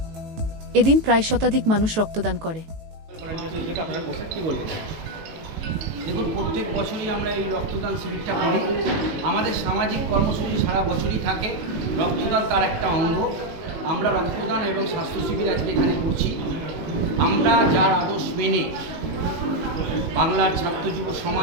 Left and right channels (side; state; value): left; late; 18 ms